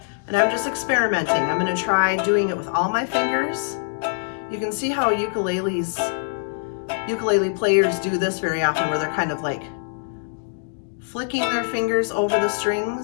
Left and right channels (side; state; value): right; silent; digital silence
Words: and I'm just experimenting. I'm going to try doing it with all my fingers. You can see how ukulele players do this very often, where they're kind of like flicking their fingers over the